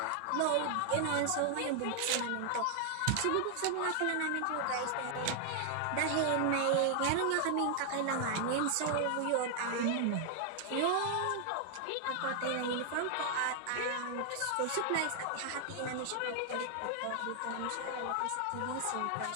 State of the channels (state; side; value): different; both; correlation 0.00